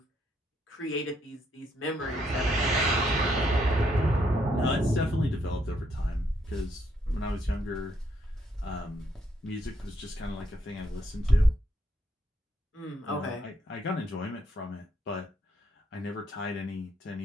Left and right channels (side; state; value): both; normal; correlation 0.74